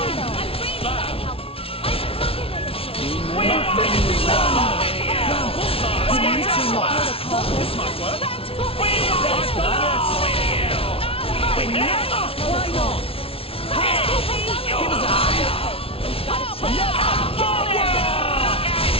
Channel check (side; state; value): right; late; 0.27 ms